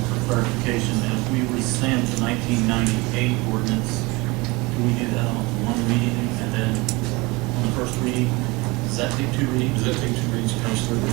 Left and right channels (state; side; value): quieter; left; 24.1 dB